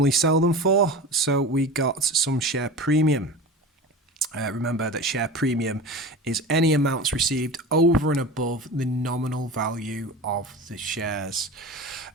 sell them for. So we got some share premium. Remember that share premium is any amounts received over and above the nominal value of the shares.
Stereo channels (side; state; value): both; normal; correlation 0.32